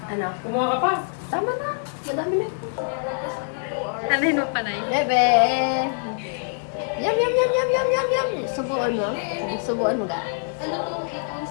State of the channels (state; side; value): silent; right; digital silence